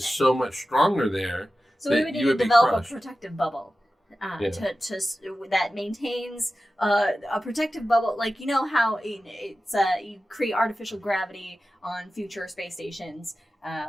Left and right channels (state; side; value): normal; both; correlation 0.94